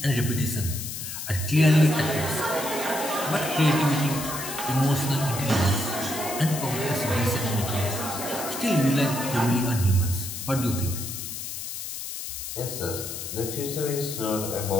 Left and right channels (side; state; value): left; noise; hiss, 7 dB below the sound